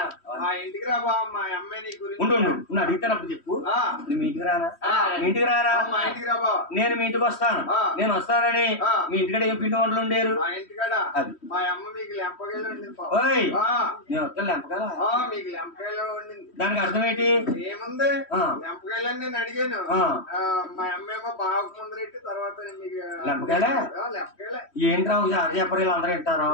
మా ఇంటికి రా బావ, మా అమ్మాయి నీ గురించి ఉండు నువ్వు అడిగితేనప్పుడు చెప్పు. మీ ఇంటికి రానా? మీ ఇంటికి రారా? మా ఇంటికి రా బావ. నేను మీ ఇంటికి వస్తాను. నేను వస్తానని మీ ఇంటికాడ ఏం పిండి వంటలు ఉండేరు? మా ఇంటికాడ అది మా అమ్మ మీకు లెంపకాయలు వండింది. నేను వస్తాను లెంపకాయలు. మీకు లెంపకాయలు వండింది. దానికి అర్థం ఏంటి? ఏముంది, లెంపకాయలని నేను అడిగాను. మా అమ్మ ఏమో బాగా ముందరెట్టి తర్వాత మీకు లెంపకాయలే. లెంపకాయలే ఏంట్రా సార్ చెప్పరు, అందరూ వింటారు.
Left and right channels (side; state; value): right; late; 3.1 ms